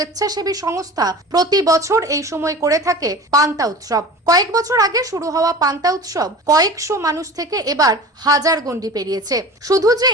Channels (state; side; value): normal; both; correlation 0.37